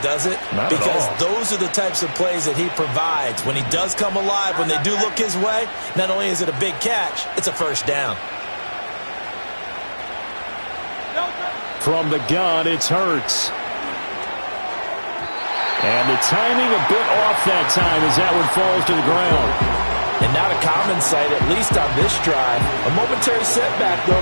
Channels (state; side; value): inverted; both; correlation -1.00